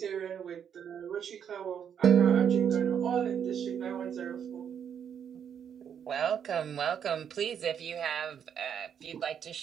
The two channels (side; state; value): left; quieter; 8.2 dB